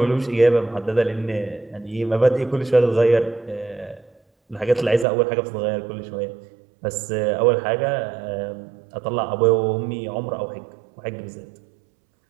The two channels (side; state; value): left; drops out; at 5.1 s